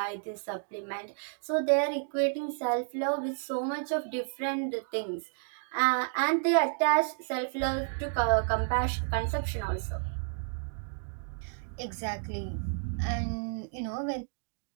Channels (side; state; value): left; silent; digital silence